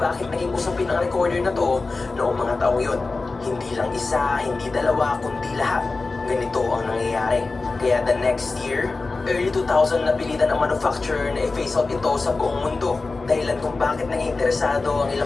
naging usapin ang recorder na to noong mga taong yun. Hindi lang isa, hindi dalawa, kundi lahat. Ganito ang nangyayari. Kaya the next year, early 2000 napilitan ang manufacturer na i-phase out ito sa buong mundo. Dahilan kung bakit naging interesado ang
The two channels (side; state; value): right; quieter; 3.7 dB